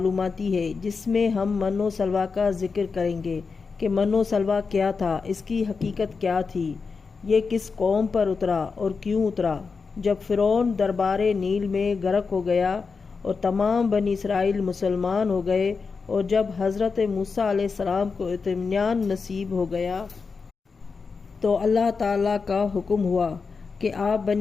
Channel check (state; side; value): quieter; right; 4.9 dB